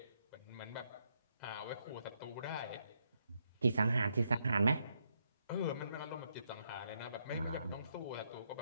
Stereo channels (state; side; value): inverted; both; correlation -0.78